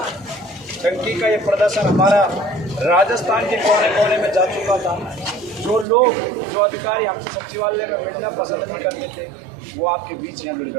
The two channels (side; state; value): left; drops out; at 5.9 s